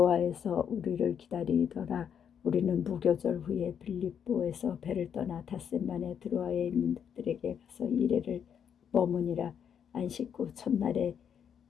우리를 기다리더라. 우리는 무교절 후에 빌립보에서 배를 떠나 닷새만에 드로아에 있는 들에게 가서 이래를 머무니라. 안식 후 첫날에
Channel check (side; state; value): right; quieter; 8.1 dB